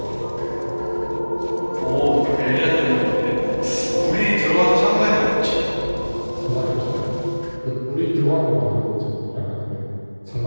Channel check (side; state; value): both; inverted; correlation -1.00